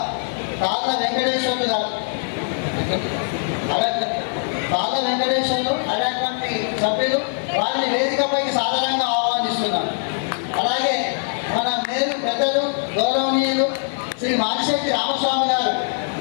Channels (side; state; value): right; silent; digital silence